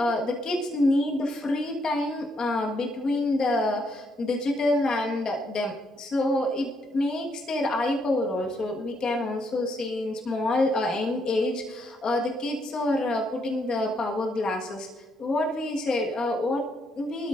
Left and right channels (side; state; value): both; normal; correlation 0.75